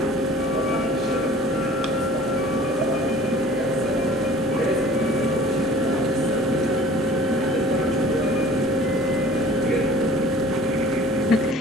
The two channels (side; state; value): both; normal; correlation 0.48